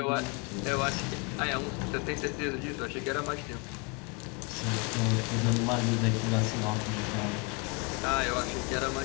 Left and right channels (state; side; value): quieter; right; 30.8 dB